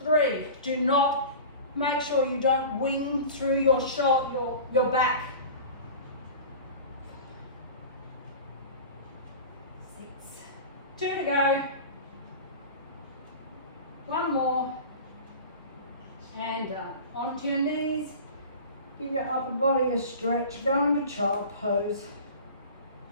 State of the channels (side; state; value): both; inverted; correlation -0.36